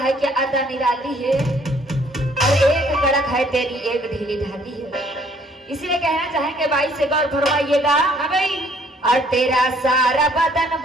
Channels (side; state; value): both; normal; correlation 0.62